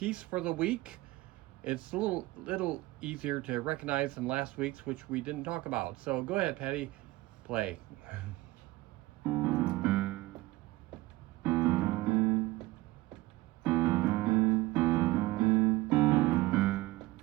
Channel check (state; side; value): quieter; left; 19.0 dB